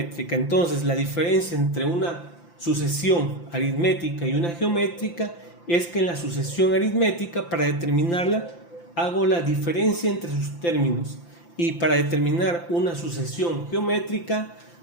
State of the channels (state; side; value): late; right; 5.8 ms